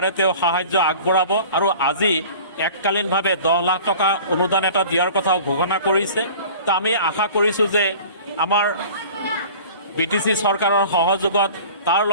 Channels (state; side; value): inverted; both; correlation -0.43